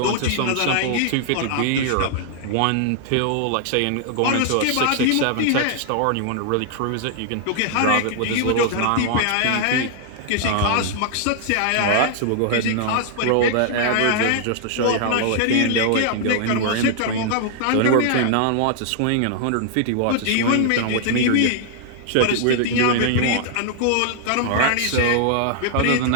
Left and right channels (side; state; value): both; different; correlation 0.00